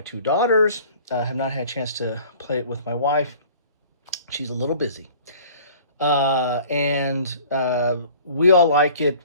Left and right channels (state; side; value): inverted; both; correlation -0.48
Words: two daughters. Have not had a chance to play it with my wife. She's a little busy. And we all like it.